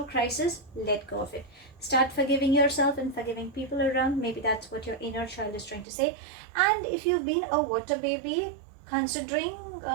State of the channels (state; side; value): drops out; left; at 5.9 s